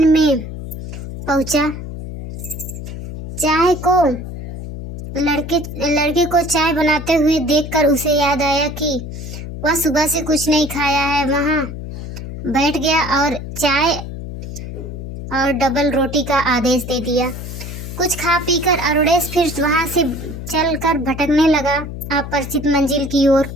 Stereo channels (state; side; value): noise; left; hum, 9 dB below the sound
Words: में पहुंचा। चाय को लड़के को चाय बनाते हुए देखकर उसे याद आया कि वह सुबह से कुछ नहीं खाया है। वहां बैठ गया और चाय और डबल रोटी का आदेश दे दिया। कुछ खा पीकर अरुणेश फिर वहां से चलकर भटकने लगा अपरिचित मंजिल की ओर।